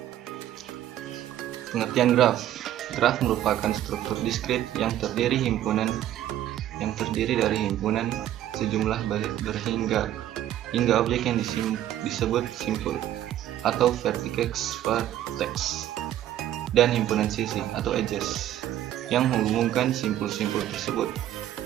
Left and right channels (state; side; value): quieter; left; 12.3 dB